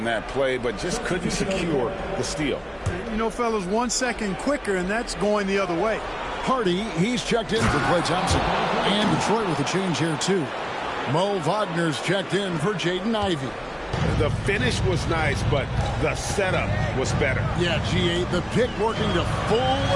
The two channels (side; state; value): both; identical; correlation 1.00